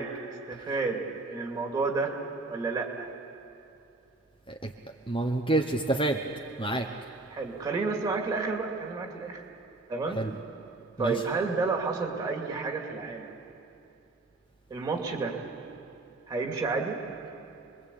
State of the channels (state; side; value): quieter; left; 3.0 dB